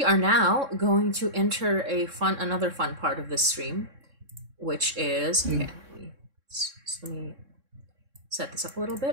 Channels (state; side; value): late; left; 3.7 ms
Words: are now going to enter another fun part of this stream, which is okay. Let me set this up a little